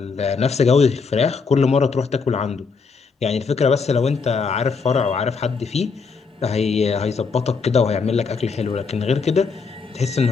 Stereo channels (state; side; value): quieter; right; 5.0 dB